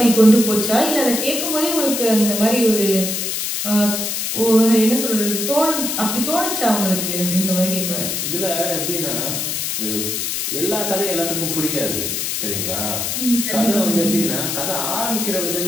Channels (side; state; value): left; noise; hiss, 2 dB below the sound